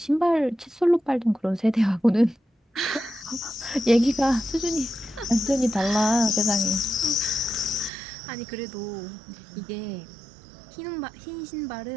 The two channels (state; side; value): drops out; left; at 7.9 s